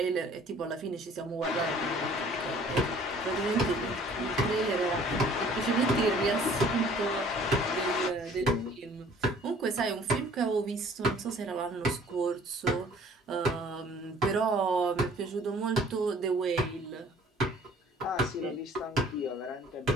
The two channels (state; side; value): normal; both; correlation 0.53